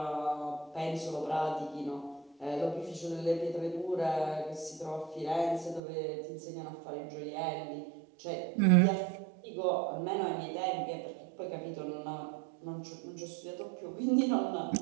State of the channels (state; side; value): drops out; left; at 5.8 s